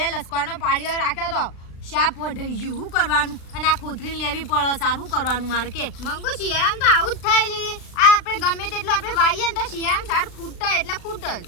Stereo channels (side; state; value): right; late; 36 ms